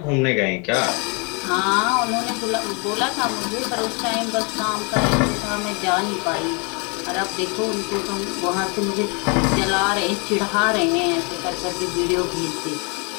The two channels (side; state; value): right; quieter; 33.3 dB